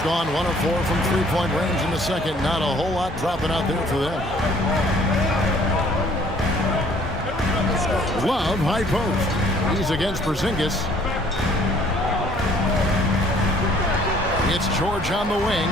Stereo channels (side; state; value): both; normal; correlation 0.58